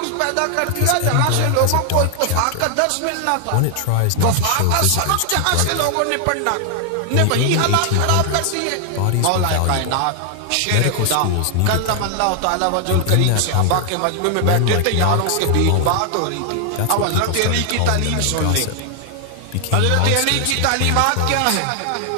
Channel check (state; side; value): different; both; correlation 0.00